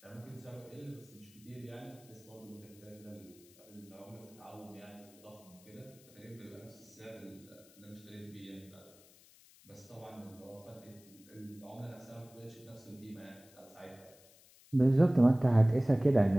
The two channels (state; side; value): noise; left; hiss, 25 dB below the sound